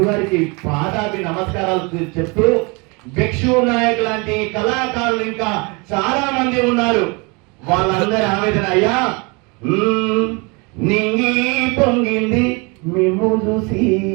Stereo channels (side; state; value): left; quieter; 29.4 dB